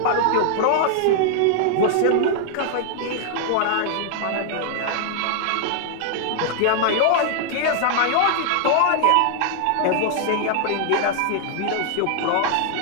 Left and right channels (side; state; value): both; different; correlation -0.01